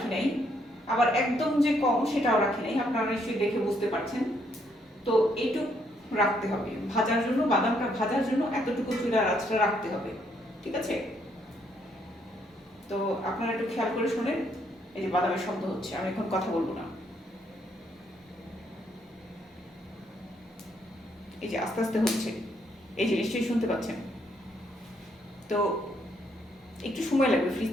নাই, আবার একদম যে কম সেটাও রাখি নাই, আপনারা নিশ্চয়ই দেখে বুঝতে পারছেন। তো এইটুকু রাখতে হবে ভাজার জন্য, বাদামটা ভাজার জন্য এতটুকু চুলার আঁচটা রাখতে হবে, ঠিক আছে। তো আপনারা একটু খেয়াল করে শোনেন, এই যে বাদামের শব্দ হচ্ছে, আমি এখন কথা বলবো না। এই যে আস্তে আস্তে হচ্ছে, এই যে নিশ্চয়ই শুনতে পাচ্ছেন। তো একটু সময় লাগবে, ফ্রিজ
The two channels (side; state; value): both; normal; correlation 0.72